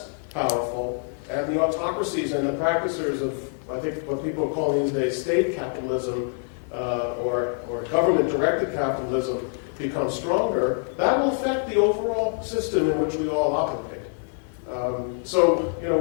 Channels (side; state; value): right; silent; 62 dB below the other